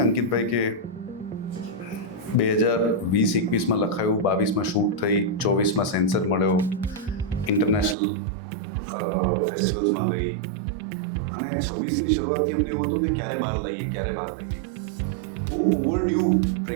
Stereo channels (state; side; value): drops out; left; at 8.0 s